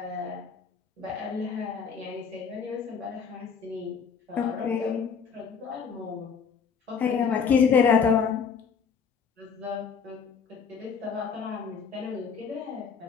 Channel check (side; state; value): right; quieter; 6.2 dB